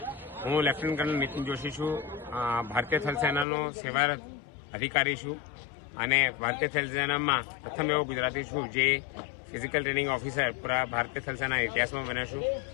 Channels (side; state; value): right; drops out; at 3.5 s